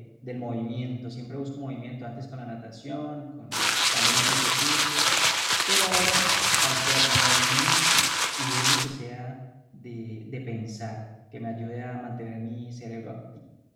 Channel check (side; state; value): both; identical; correlation 1.00